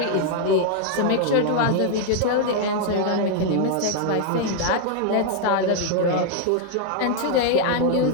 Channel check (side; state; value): both; different; correlation 0.00